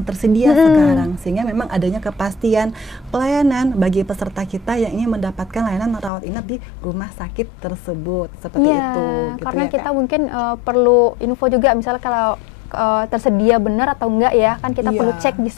tersedia sekarang. Sehingga memang adanya kepastian pelayanan bagi peserta kita yang ingin mendapatkan layanan rawat inap di rumah sakit tersebut. Seperti itu gitu karena ya, kita Kak. mungkin perlu info juga misalnya kalau tersedia benar atau enggak ya, kan kita perlu cek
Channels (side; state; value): right; drops out; at 6.1 s